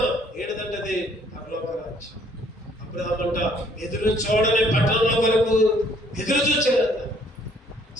ఏంటిదంటే అది పరలోక రాజ్యం. అబ్రహామంట ఎదురు చూడని పట్టణంలో కొరకు ఎదురు చూచారంట.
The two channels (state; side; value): normal; both; correlation 0.62